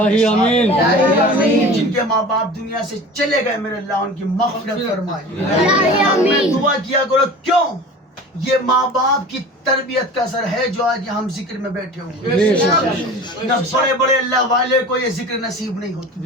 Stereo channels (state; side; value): normal; both; correlation 0.38